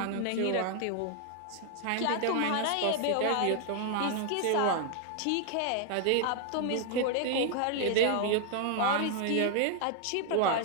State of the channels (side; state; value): both; different; correlation 0.00